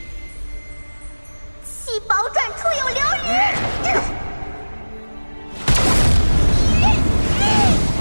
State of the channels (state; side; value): inverted; both; correlation -1.00